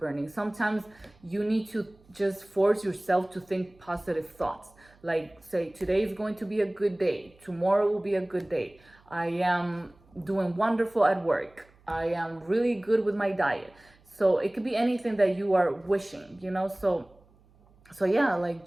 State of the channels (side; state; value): right; noise; hum, 30 dB below the sound